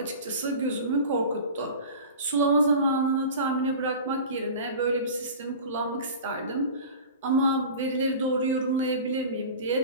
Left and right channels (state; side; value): inverted; both; correlation -0.36